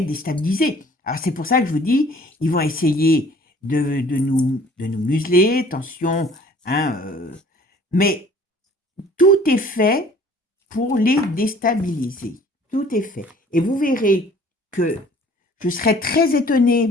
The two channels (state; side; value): normal; both; correlation 0.52